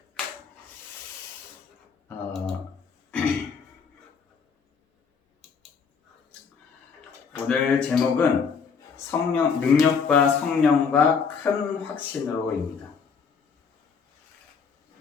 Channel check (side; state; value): right; quieter; 5.9 dB